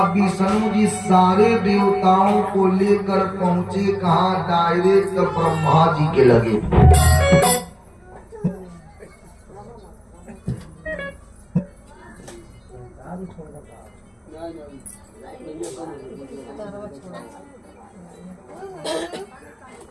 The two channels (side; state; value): both; identical; correlation 1.00